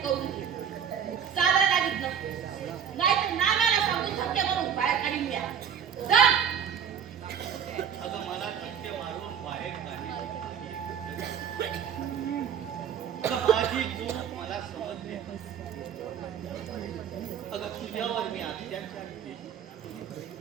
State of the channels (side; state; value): left; quieter; 8.2 dB